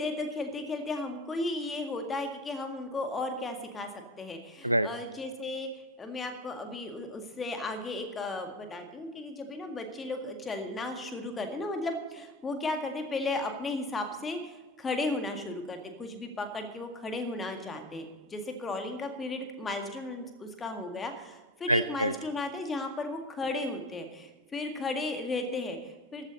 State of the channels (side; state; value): both; normal; correlation 0.26